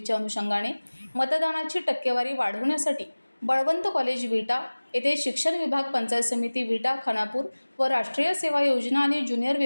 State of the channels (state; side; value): inverted; both; correlation -1.00